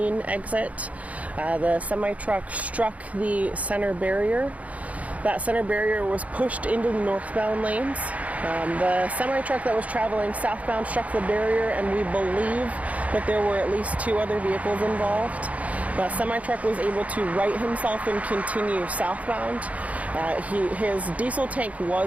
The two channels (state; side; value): late; left; 0.069 ms